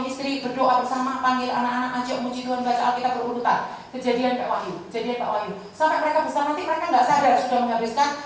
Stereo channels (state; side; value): identical; both; correlation 1.00